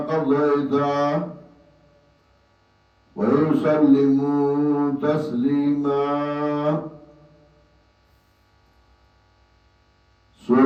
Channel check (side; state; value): both; identical; correlation 1.00